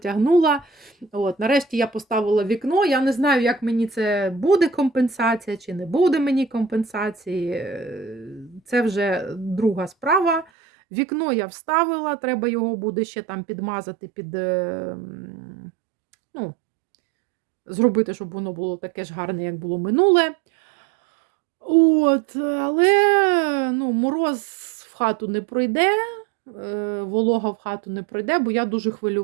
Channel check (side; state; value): left; drops out; at 10.5 s